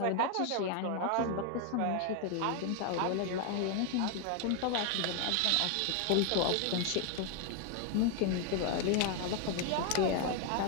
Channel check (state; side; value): different; both; correlation 0.01